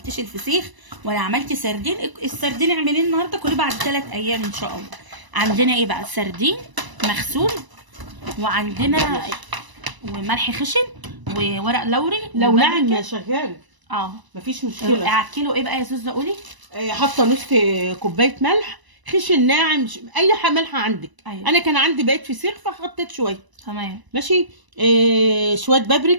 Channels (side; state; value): left; late; 1.0 ms